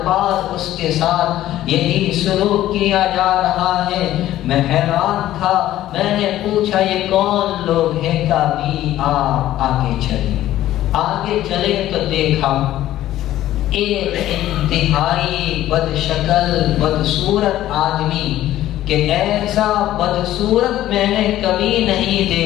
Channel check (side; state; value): right; quieter; 13.7 dB